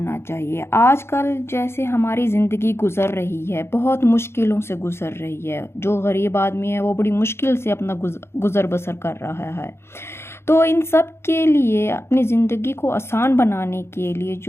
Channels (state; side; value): late; right; 0.12 ms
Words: چاہیے۔ آج کل جیسے ہماری زندگی گزر رہی ہے، بہت مشکلوں سے گزر رہی ہے۔ جو غریب آدمی ہے وہ بڑی مشکل سے اپنا گزر بسر کر رہا ہے۔ تو ان سب کے لیے اپنی زندگی کو آسان بنانے کے لیے